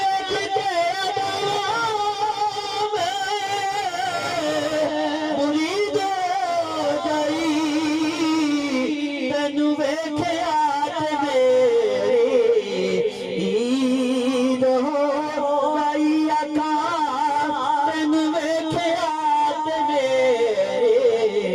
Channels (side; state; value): both; identical; correlation 1.00